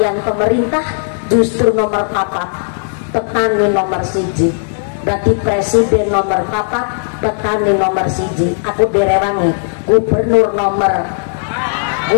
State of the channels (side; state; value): right; silent; digital silence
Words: pemerintah justru nomor 4. Petani nomor 1, berarti presiden nomor 4, petani nomor 1. Aku direwangi gubernur nomor,